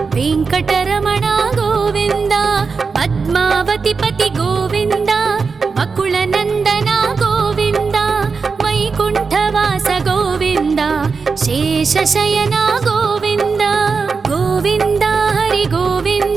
वेङ्कटरमण गोविन्द पद्मावति पति गोविन्द बकुलनन्दन गोविन्द वैकुण्ठवास गोविन्द शेषशयन गोविन्द गोविन्द हरि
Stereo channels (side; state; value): left; quieter; 4.9 dB